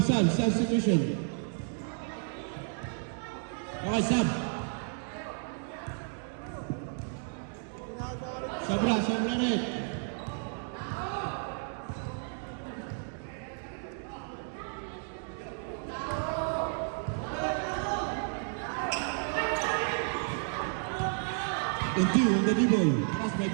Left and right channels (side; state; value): left; silent; 56 dB below the other